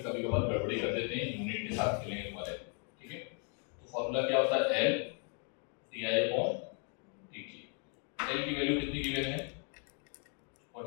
कभी कभार गड़बड़ी कर देते हैं, यूनिट के साथ खेलेंगे तुम्हारे। ठीक है, तो फॉर्मूला क्या होता है? L di/dt। L की वैल्यू कितनी गिवन है?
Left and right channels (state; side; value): quieter; right; 39.8 dB